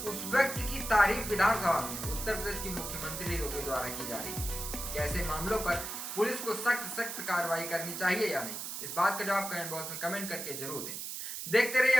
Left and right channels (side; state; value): right; noise; hiss, 6 dB below the sound